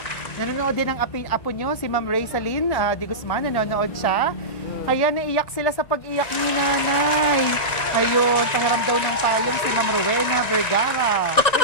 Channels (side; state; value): right; late; 1.9 ms